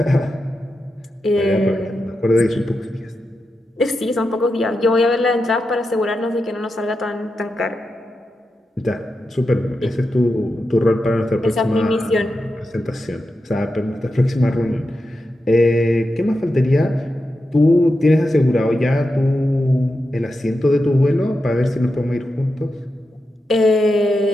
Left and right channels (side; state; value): both; normal; correlation 0.89